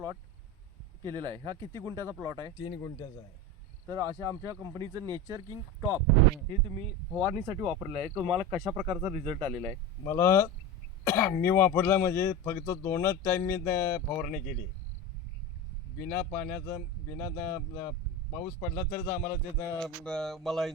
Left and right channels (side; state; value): both; normal; correlation 0.25